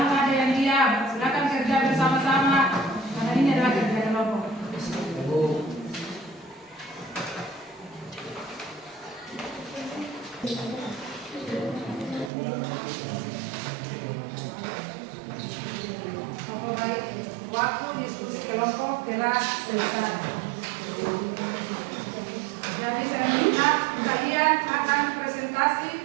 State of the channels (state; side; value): drops out; left; at 12.3 s